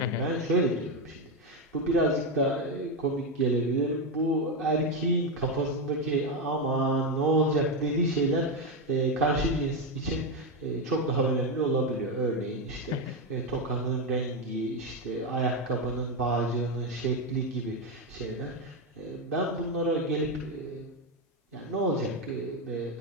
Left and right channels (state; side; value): normal; both; correlation 0.08